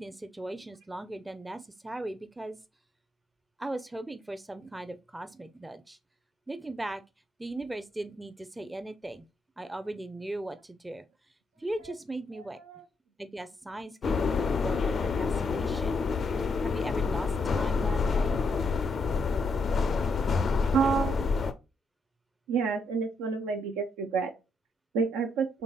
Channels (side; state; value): both; normal; correlation 0.77